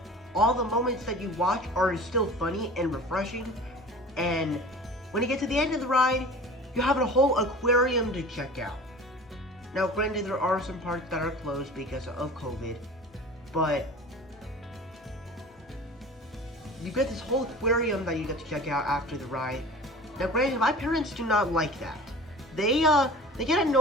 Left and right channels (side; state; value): both; normal; correlation 0.40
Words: all the moments that you watch are still funny and refreshing. And when you get to the end of the ride, you have a whole aquarium to check out. Now, granted, there are some parts that are closed because of COVID, but you get this whole aquarium that you get to check out after the ride. Now, granted, my parents do not like that. They get